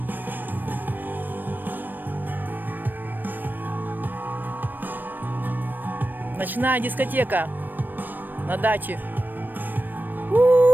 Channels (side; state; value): left; late; 0.091 ms